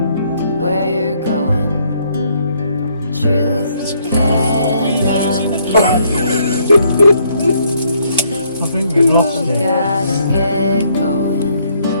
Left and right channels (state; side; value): inverted; both; correlation -0.69